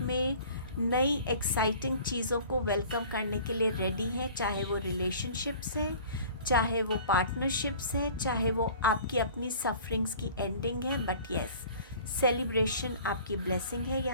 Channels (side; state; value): both; inverted; correlation -0.46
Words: नई एक्साइटिंग चीज़ों को वेलकम करने के लिए रेडी हैं, चाहे वो रिलेशनशिप्स हैं, चाहे वो पार्टनरशिप्स हैं, चाहे वो आपकी अपनी सफरिंग्स की एंडिंग है। बट येस, सेलिब्रेशन आपकी ब्लेसिंग है